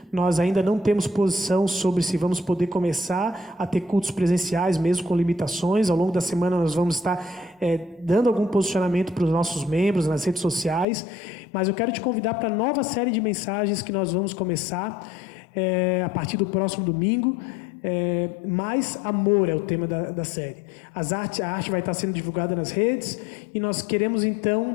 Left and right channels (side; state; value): right; drops out; at 10.9 s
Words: Nós ainda não temos posição sobre se vamos poder começar a ter cultos presenciais, mesmo com limitações. Ao longo da semana nós vamos estar dando algum posicionamento para os nossos membros nas redes sociais. Mas eu quero te convidar para a nova série de mensagens que nós vamos começar a partir do próximo domingo. Mais amor é o tema da série. A arte vai estar sendo divulgada nas redes e nós queremos